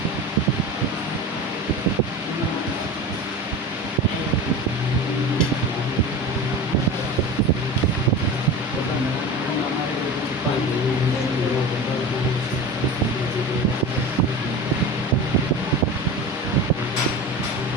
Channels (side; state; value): both; normal; correlation 0.30